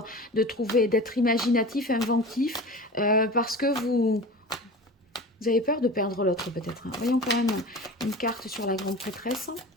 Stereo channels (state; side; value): normal; both; correlation 0.34